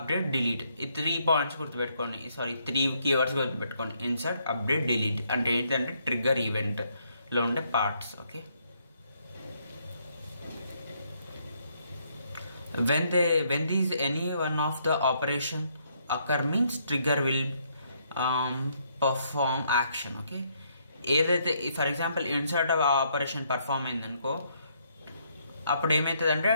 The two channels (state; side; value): inverted; both; correlation -0.72